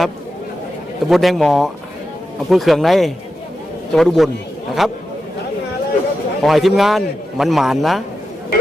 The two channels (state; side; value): normal; both; correlation 0.89